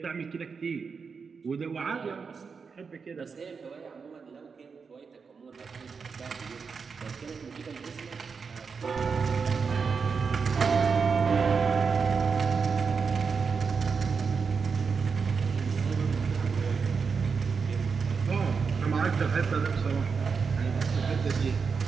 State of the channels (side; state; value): left; quieter; 5.4 dB